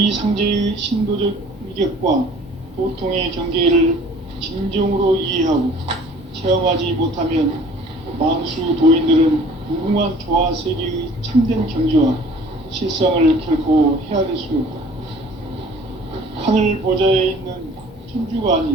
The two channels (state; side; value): normal; both; correlation 0.50